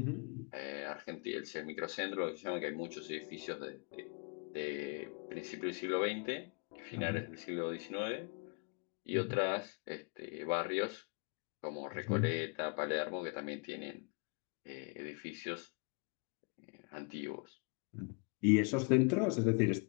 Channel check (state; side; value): quieter; right; 36.0 dB